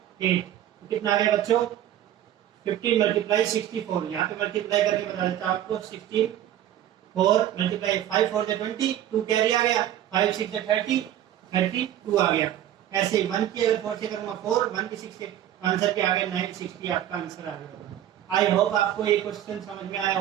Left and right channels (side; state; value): left; quieter; 11.9 dB